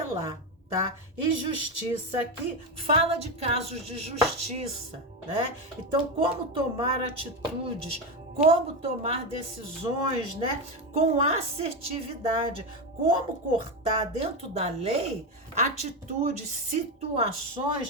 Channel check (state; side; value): normal; both; correlation 0.13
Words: Tá? E justiça aqui fala de casos de justiça, né? Então, como tomar atitudes, como tomar decisões, né? Com assertividade, como cortar dentro da lei atitudes,